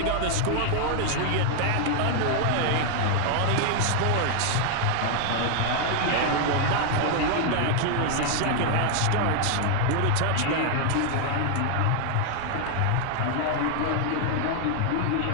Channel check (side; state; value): both; different; correlation 0.00